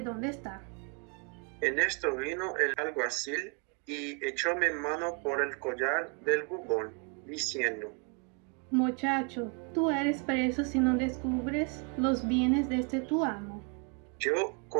dónde está. En esto vino el alguacil y echóme mano por el collar del bubón, diciendo: Muchacho, tú eres preso si no descubres los bienes de este tu amo. Yo,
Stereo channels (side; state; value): left; quieter; 35.2 dB